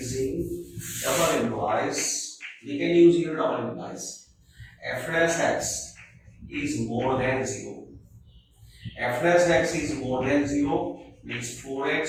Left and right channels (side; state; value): both; identical; correlation 1.00